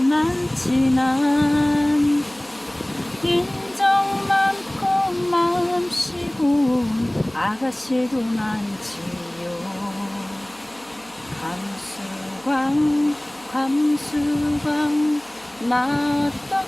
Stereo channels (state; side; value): noise; right; hum, 30 dB below the sound